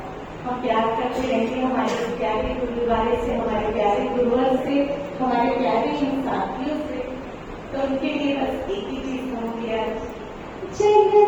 हम प्यार करते रहेंगे हमारे प्यारे गुरुद्वारे से, हमारे प्यारे गुरुवर से, हमारे प्यारे इन साथियों से। तो उनके लिए बस एक ही चीज कहूंगी आज,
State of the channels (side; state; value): both; identical; correlation 1.00